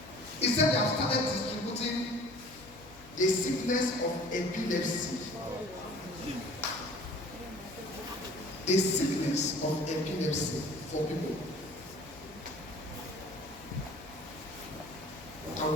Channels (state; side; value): noise; left; hum, 21 dB below the sound